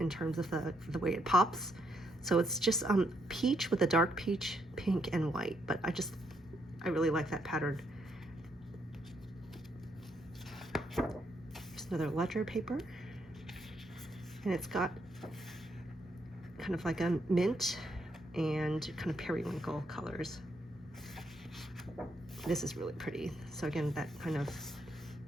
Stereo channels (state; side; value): normal; both; correlation 0.75